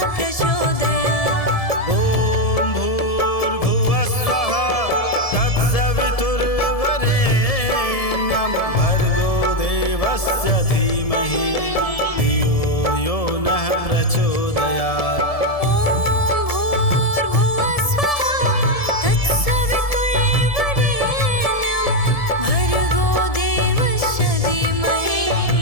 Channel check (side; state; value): right; late; 1.7 ms